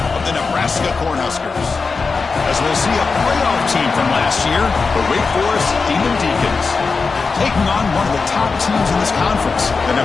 of the Nebraska Cornhuskers. As we'll see a playoff team from last year, the Wake Forest Demon Deacons, taking on one of the top teams in this conference, the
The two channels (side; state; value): right; quieter; 4.6 dB